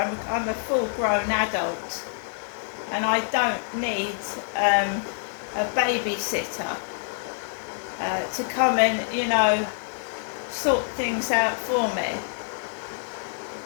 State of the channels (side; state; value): right; silent; 61 dB below the other